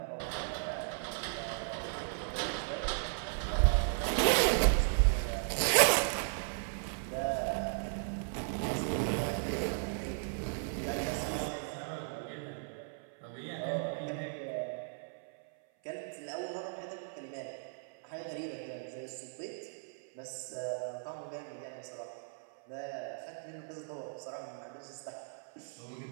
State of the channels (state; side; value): silent; left; 54 dB below the other